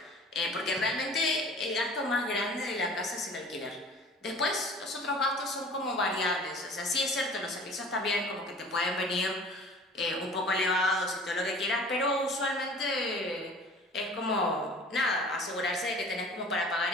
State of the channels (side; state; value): both; normal; correlation 0.45